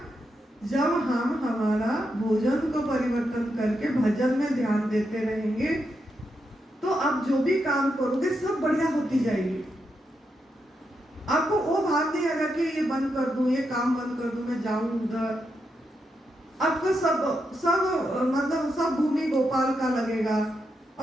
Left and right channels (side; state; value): both; normal; correlation 0.84